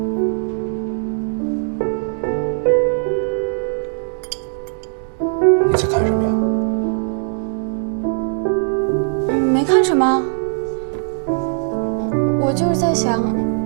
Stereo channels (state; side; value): silent; left; 63 dB below the other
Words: 你在看什么呀？没看什么。我就是在想，